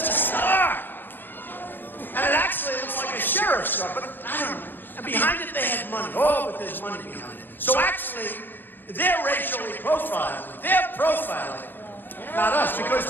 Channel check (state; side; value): late; right; 0.094 ms